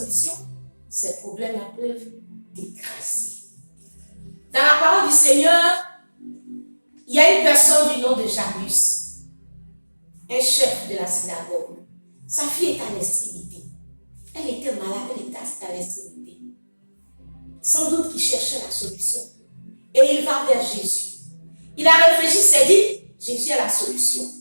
ces problèmes-là peuvent t'écraser. Dans la parole du Seigneur, il y a une personne du nom de Jairus, un chef de la synagogue. Sa fille est à l'extrémité. Elle était malade, elle était à l'extrémité. Sans doute qu'il cherchait la solution. Et il va vers Jésus. Il a réfléchi, s'est dit, Jésus a la solution.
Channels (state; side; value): inverted; both; correlation -1.00